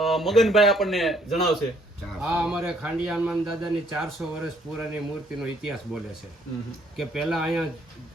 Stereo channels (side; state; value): both; normal; correlation 0.65